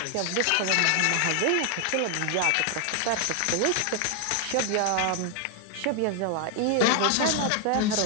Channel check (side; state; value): both; different; correlation 0.00